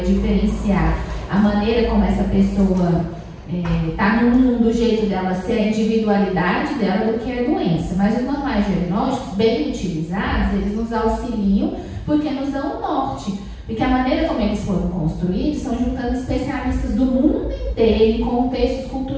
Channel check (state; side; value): identical; both; correlation 1.00